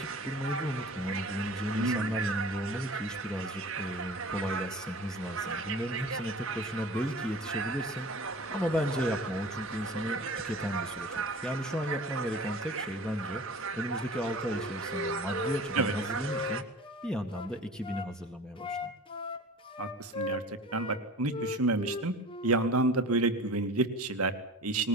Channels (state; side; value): normal; both; correlation 0.39